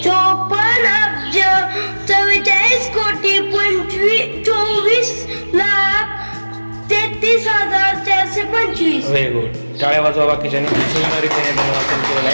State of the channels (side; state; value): both; inverted; correlation -1.00